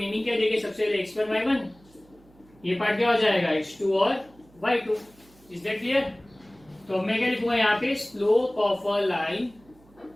क्या देंगे, सबसे पहले x1 y1, ये पार्ट क्या हो जाएगा x2 और y2। Is that clear? तो मैं क्या लिखूंगा यहाँ पे, slope of a line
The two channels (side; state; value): right; noise; hum, 28 dB below the sound